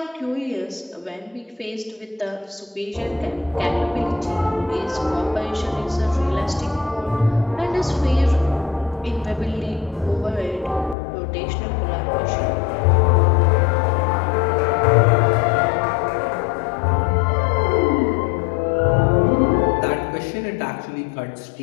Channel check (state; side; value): drops out; right; at 11.0 s